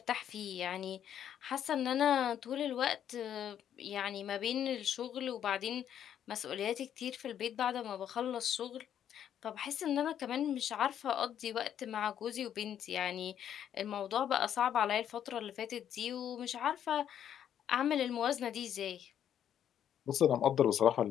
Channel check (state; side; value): quieter; right; 9.8 dB